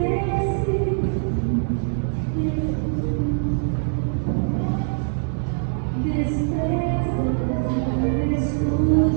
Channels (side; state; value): left; silent; digital silence